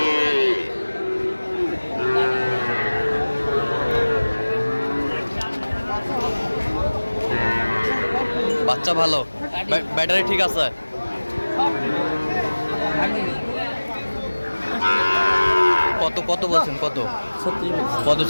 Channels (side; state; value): both; inverted; correlation -1.00